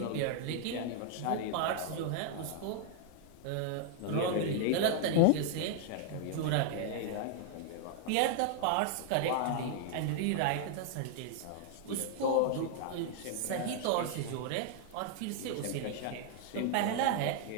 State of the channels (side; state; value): both; different; correlation 0.00